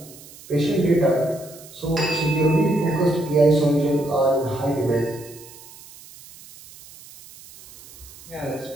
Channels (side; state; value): right; noise; hiss, 20 dB below the sound